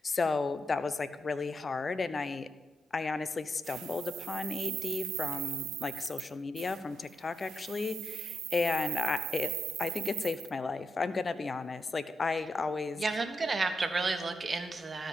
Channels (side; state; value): both; normal; correlation 0.83